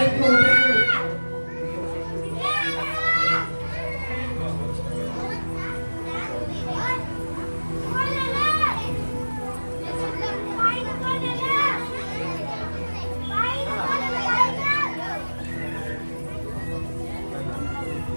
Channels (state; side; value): inverted; both; correlation -1.00